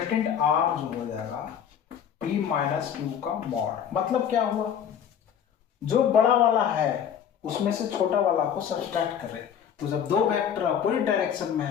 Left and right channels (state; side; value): quieter; right; 8.5 dB